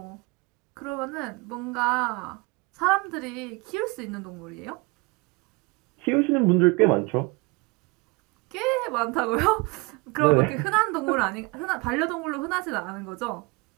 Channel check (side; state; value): left; quieter; 27.0 dB